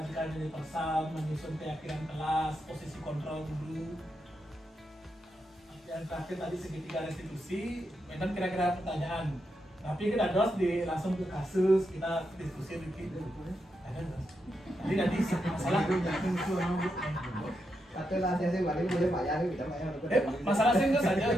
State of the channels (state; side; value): normal; both; correlation 0.84